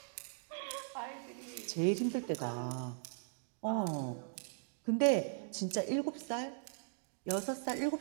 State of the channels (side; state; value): left; silent; digital silence